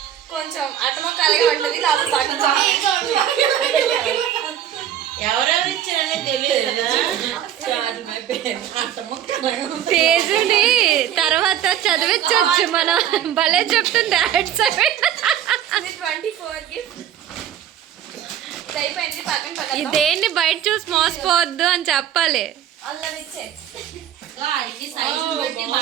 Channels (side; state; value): left; quieter; 10.5 dB